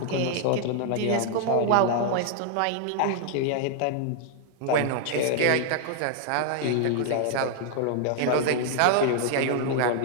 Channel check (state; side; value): different; both; correlation -0.01